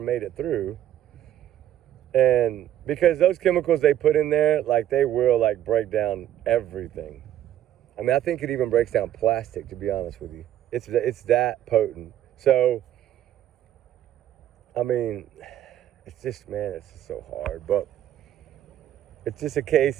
it through? And because those chemicals they put in there, like, they will, like, break down everything. I mean, I think it even breaks down plastic, to be honest with you. It's that potent. So, I mean, it's just, man, it's just so hard. But it's just a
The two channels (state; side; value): quieter; left; 11.8 dB